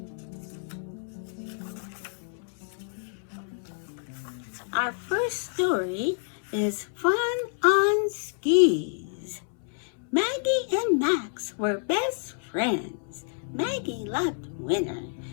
Our first story is Fun on Skis. Maggie and Max were best friends. Maggie loved winter.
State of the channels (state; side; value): silent; right; 59 dB below the other